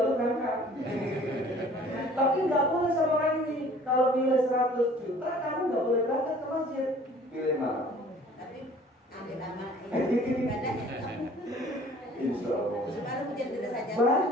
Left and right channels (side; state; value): both; normal; correlation 0.51